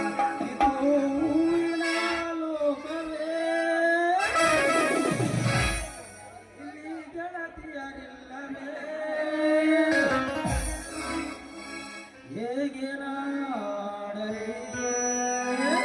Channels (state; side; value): identical; both; correlation 1.00